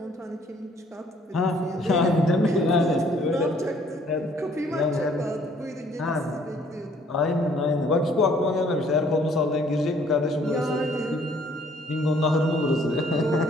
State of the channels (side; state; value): both; normal; correlation 0.61